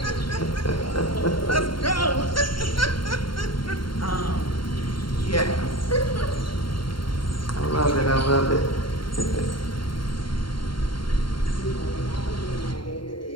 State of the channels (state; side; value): late; right; 0.73 ms